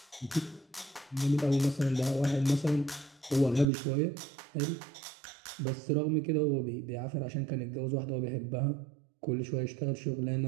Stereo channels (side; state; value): left; drops out; at 3.7 s